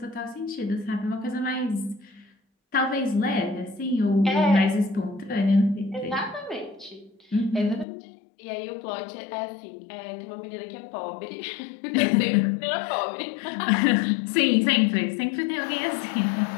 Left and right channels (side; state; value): right; drops out; at 7.9 s